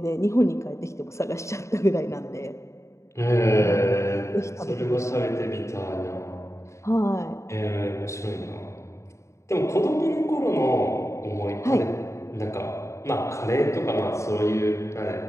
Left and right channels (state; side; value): late; right; 0.14 ms